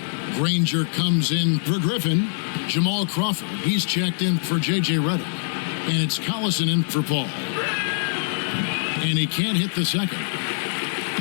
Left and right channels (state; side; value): silent; right; digital silence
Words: Granger comes in for Griffin. Jamal Crawford, he's checked in for J.J. Redick. And it's Collison in for Paul. And he can't hit the second.